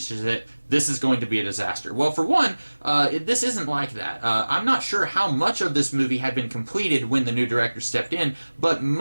it. This is going to be a disaster. Well, for one, this isn't like that. I'm not sure how much of this movie had been completed when the new director stepped in, but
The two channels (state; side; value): inverted; both; correlation -1.00